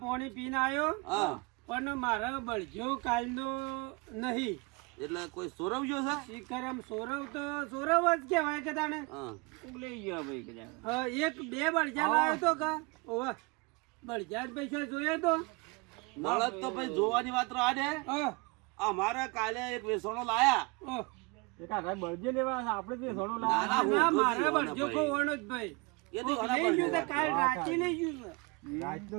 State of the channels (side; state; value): left; quieter; 27.6 dB